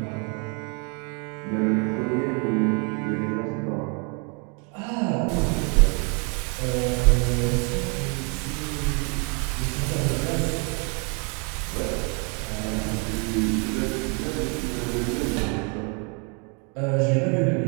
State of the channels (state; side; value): quieter; left; 35.5 dB